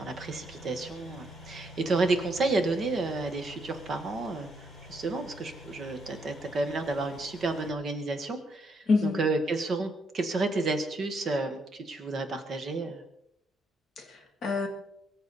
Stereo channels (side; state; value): both; normal; correlation 0.75